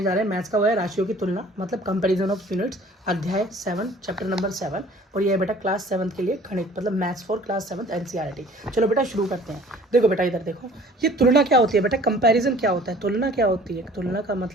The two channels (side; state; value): both; normal; correlation 0.51